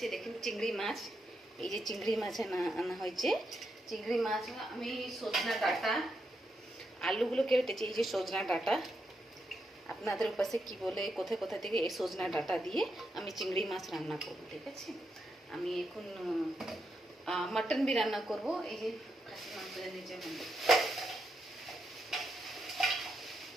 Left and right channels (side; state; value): both; normal; correlation 0.83